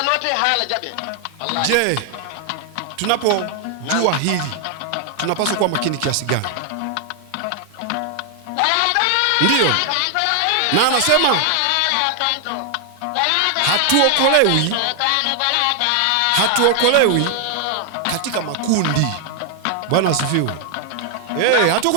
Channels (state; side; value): different; both; correlation 0.00